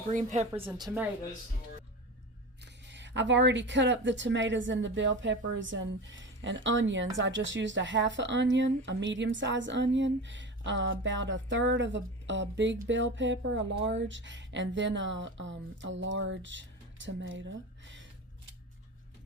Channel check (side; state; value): both; normal; correlation 0.28